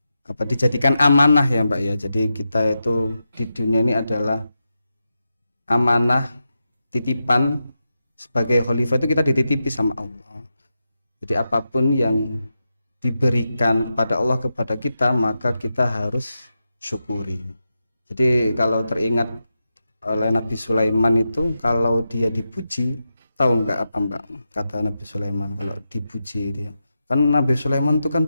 dijadikan amanah ya Mbak ya. Jadi kita itu di dunia ini adalah amanah, titipan. Sebagai khalifah itu kita dititipi sama Allah. Jadi apapun yang diberikan kepada Allah kepada kita, maka kita harus syukuri. Jadi kalau teringat oleh Nabi Sulaiman itu, kalau dia dipuji, tahu nggak apa Mbak kata Nabi Sulaiman kalau dipuji dia? Kan Nabi Sulaiman itu kan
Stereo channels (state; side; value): inverted; both; correlation -0.89